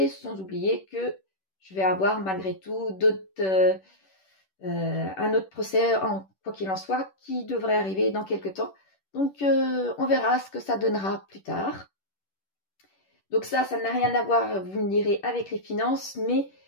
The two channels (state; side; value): late; right; 10 ms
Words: sans oublier que je vais avoir malgré tout un autre procès, quoi qu'il en soit, qui devrait arriver dans quelques temps. Donc, on verra ce que ça donnera plus tard. Donc ça n'a rien à voir, vous me direz, avec les finances, mais